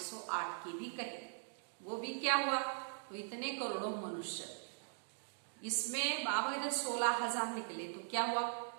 की भी कहे। वो भी क्या हुआ, तो इतने करोड़ों मनुष्य, इसमें बाबा इधर 16,000 निकले तो क्या हुआ,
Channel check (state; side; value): silent; left; digital silence